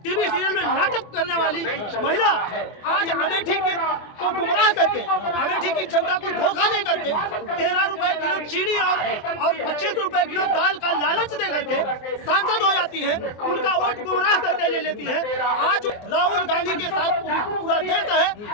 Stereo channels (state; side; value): late; right; 24 ms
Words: टीवी सीरियल में नाटक करने वाली महिला आज अमेठी को गुमराह करके, अमेठी की जनता को धोखा दे करके 13 रुपए किलो चीनी और 25 रुपए किलो दाल का लालच दे करके सांसद हो जाती है, उनका वोट गुमराह करके ले लेती है। आज राहुल गांधी के साथ पूरा देश